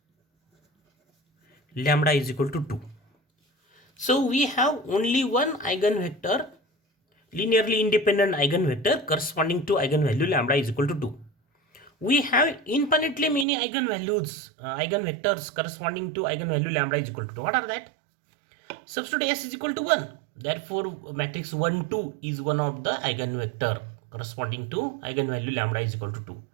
lambda is equal to 2. So we have only one eigenvector, linearly independent eigenvector corresponding to eigenvalue lambda is equal to 2. We have infinitely many eigenvalues, eigenvectors corresponding to eigenvalue lambda is equal to 2. What are that? Substitute S is equal to 1. Therefore, matrix 1, 2 is one of the eigenvector corresponding to eigenvalue lambda is equal to 2.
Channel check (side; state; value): left; drops out; at 13.5 s